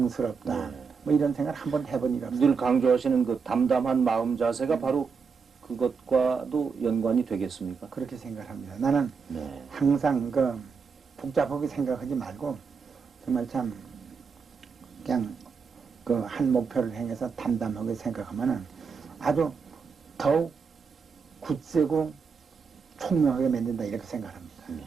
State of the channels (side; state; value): left; quieter; 5.5 dB